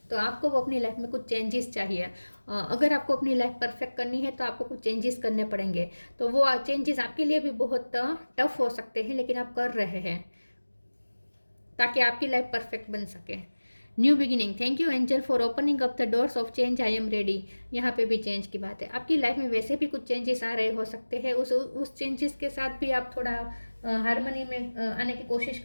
तो आपको अपनी लाइफ में कुछ चेंजेस चाहिए। अगर आपको अपनी लाइफ परफेक्ट करनी है तो आपको कुछ चेंजेस करने पड़ेंगे। तो वो चेंजेस आपके लिए भी बहुत टफ हो सकते हैं, लेकिन आप कर रहे हैं ताकि आपकी लाइफ परफेक्ट बन सके। New beginning, thank you angel for opening up the doors of change, I am ready. यहाँ पे भी चेंज की बात है। आपकी लाइफ में वैसे भी कुछ चेंजेस आ रहे हो सकते हैं, उस चेंजेस के साथ भी आप थोड़ा हारमोनी में आने की कोशिश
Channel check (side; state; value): both; inverted; correlation -1.00